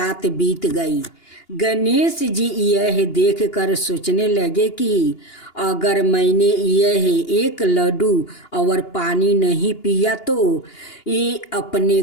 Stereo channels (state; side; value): late; right; 2.8 ms